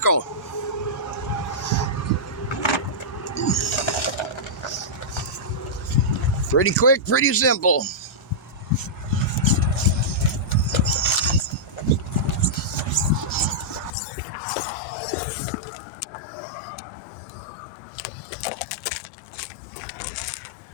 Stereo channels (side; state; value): right; drops out; at 13.9 s